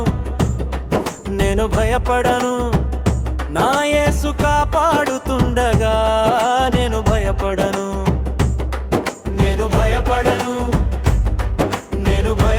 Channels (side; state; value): both; identical; correlation 1.00